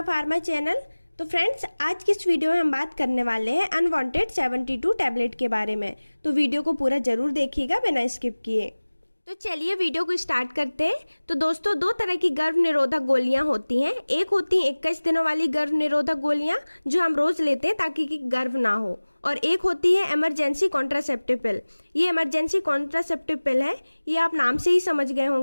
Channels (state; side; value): inverted; both; correlation -1.00